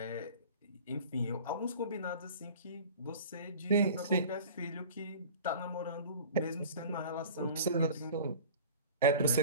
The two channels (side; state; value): both; inverted; correlation -0.41